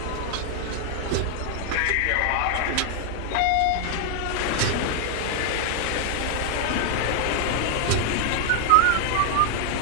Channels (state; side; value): different; both; correlation 0.00